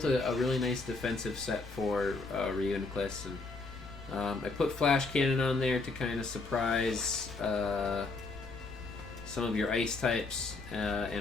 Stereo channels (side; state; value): right; quieter; 3.6 dB